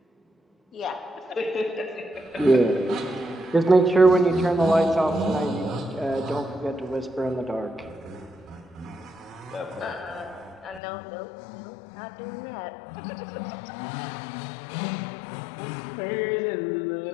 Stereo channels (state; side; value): drops out; right; at 10.8 s